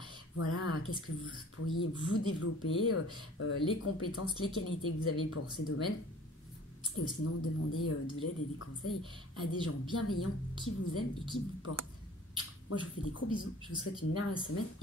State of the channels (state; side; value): normal; both; correlation 0.49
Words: qu'est-ce que vous pourriez vous développer, les compétences, les qualités que vous avez pour ces domaines. Et sinon, demandez de l'aide et des conseils à des gens bienveillants qui vous aiment et qui vous portent. Moi, je vous fais des gros bisous, je vous souhaite une merveilleuse semaine